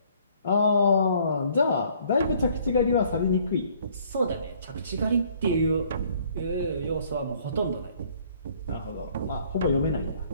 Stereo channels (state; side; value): inverted; both; correlation -0.60